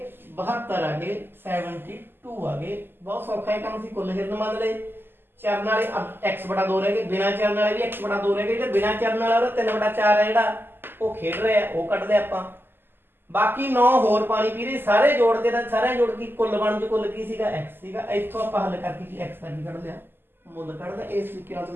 72 ਆ ਗਏ, 72 ਆ ਗਏ। ਬਹੁਤ ਸੌਖਾ ਇਹ ਕੰਮ ਸੀ। ਕੁੱਲ ਹਿਰਨ ਮੰਨ ਲਏ, ਚਰਨ ਵਾਲੇ x/2 ਰਹਿ ਗਏ, ਬਿਨਾਂ ਚਰਨ ਵਾਲੇ ਵੀ x/2 ਰਹਿ ਗਏ। ਜਿਹੜੇ ਬਿਨਾਂ ਚਰਨ ਵਾਲਾ ਉਹਦਾ 3/4 ਹੈ ਜਿਹੜਾ ਉਹ ਖੇਡ ਰਿਹਾ, ਉਹ ਕੱਢਦੇ ਆਪਾਂ। ਬਾਕੀ 9 ਹੋਰ ਪਾਣੀ ਪੀ ਰਹੇ, ਸਾਰੇ ਜੋੜਦੇ ਤਾਂ ਸਾਰੇ ਜੋੜ ਕੇ ਕੁੱਲ ਬਣ ਜੋ ਕੁੱਲ ਕੀ ਸੀਗਾ x ਸੀਗਾ। ਇੱਥੋਂ ਆਪਾਂ ਹੱਲ ਕਰਕੇ ਕੀ x ਦਾ ਕੀ ਕੱਢ ਲਿਆ? ਮੁੱਲ ਕੱਢਦਾ। ਇਸ ਤਰੀਕੇ ਨਾਲ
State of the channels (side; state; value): left; late; 0.099 ms